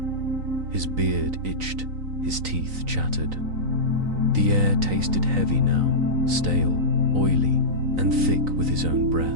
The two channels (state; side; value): late; left; 3.9 ms